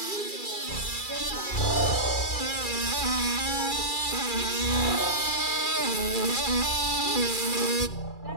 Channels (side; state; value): right; late; 2.3 ms